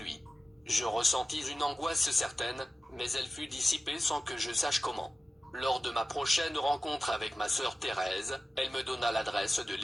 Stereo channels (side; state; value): both; normal; correlation 0.95